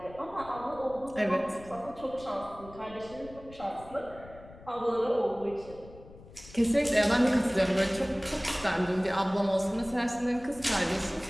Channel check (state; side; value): noise; left; rumble, 19 dB below the sound